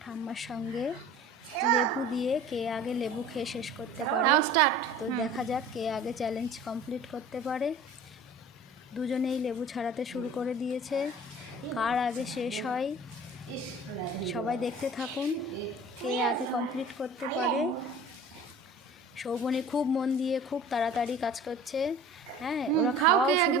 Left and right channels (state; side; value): normal; both; correlation 0.43